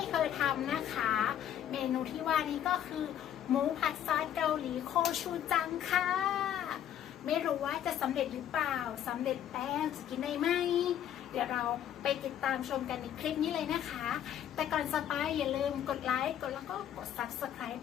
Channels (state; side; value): quieter; right; 10.4 dB